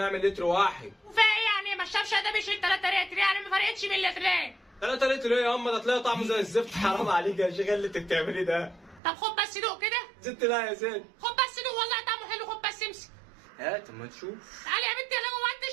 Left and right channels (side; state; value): left; drops out; at 9.0 s